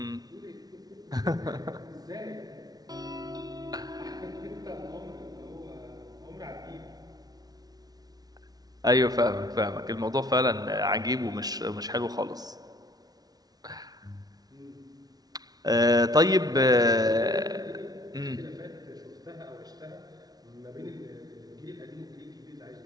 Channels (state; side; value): late; left; 0.19 ms